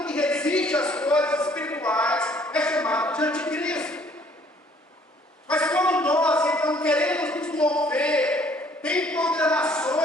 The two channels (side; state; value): both; normal; correlation 0.60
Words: que resiste às coisas espirituais é chamado de anticristo. Mas quando nós, então, queremos nos mover, tem